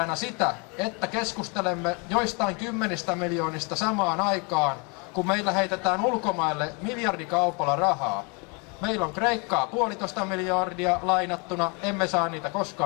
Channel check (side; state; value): right; quieter; 33.0 dB